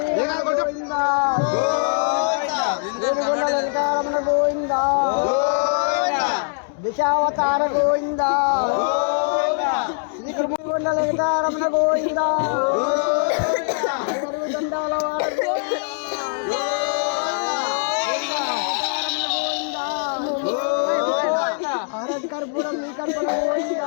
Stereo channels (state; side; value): silent; right; 64 dB below the other